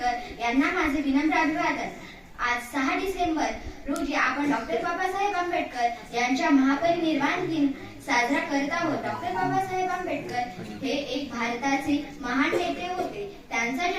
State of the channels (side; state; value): both; identical; correlation 1.00